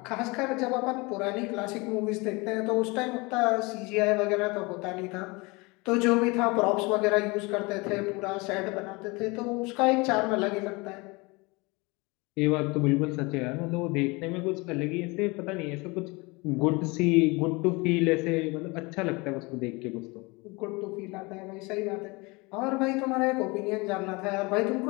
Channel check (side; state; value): right; quieter; 25.9 dB